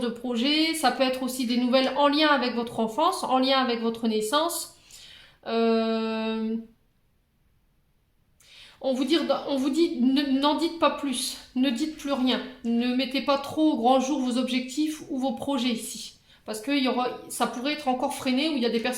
projets. Ça peut être aussi des nouvelles en lien avec votre enfance, en lien avec votre naissance. On vous dit, n'en dites pas plus, ne dites plus rien, ne mettez pas trop au grand jour vos objectifs ou vos projets ici, parce que ça pourrait être encore freiné, ou il y a des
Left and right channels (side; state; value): both; identical; correlation 1.00